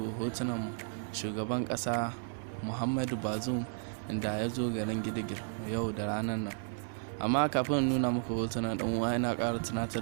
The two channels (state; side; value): silent; left; digital silence